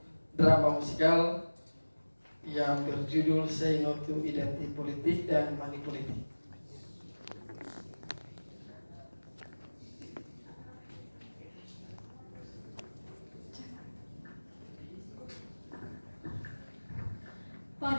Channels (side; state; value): both; inverted; correlation -1.00